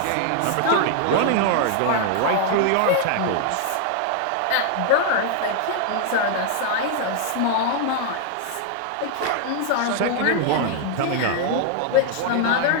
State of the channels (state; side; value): different; both; correlation 0.00